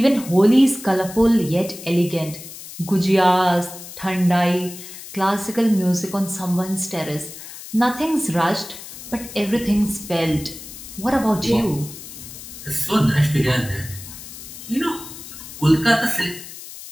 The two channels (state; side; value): noise; left; hiss, 14 dB below the sound